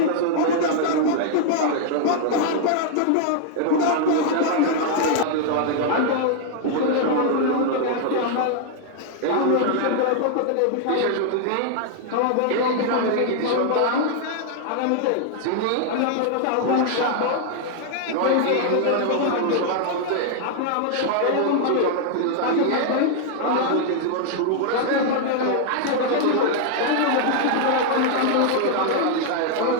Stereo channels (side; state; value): both; different; correlation 0.00